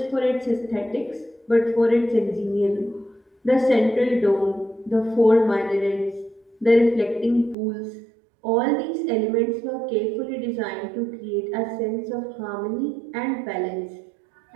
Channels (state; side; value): drops out; left; at 7.6 s